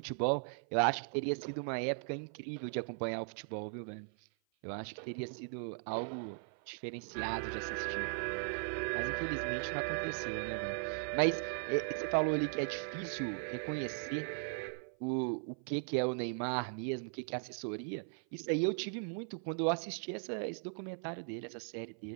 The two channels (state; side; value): silent; left; 52 dB below the other